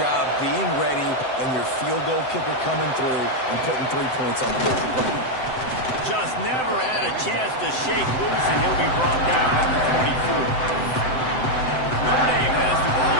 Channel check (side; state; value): right; late; 7.8 ms